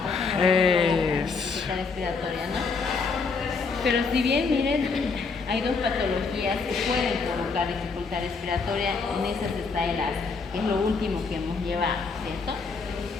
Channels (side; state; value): right; quieter; 4.7 dB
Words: Dificultad respiratoria, ¿no? Pero si bien, miren, hay dos patologías que pueden provocar dificultad respiratoria, en esas está el asma, que es lo último que hemos llevado, ¿cierto?